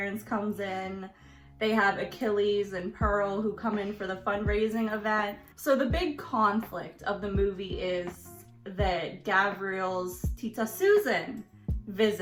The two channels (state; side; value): identical; both; correlation 1.00